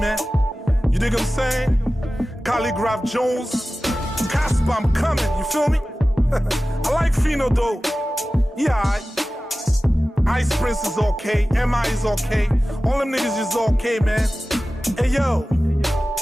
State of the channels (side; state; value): both; normal; correlation 0.96